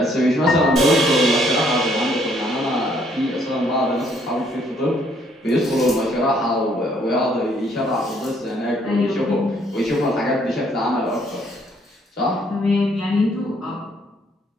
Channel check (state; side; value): normal; both; correlation 0.66